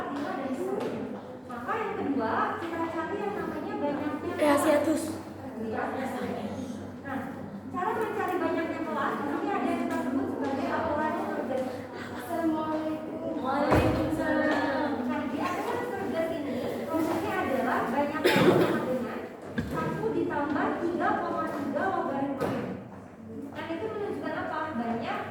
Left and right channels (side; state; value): both; identical; correlation 1.00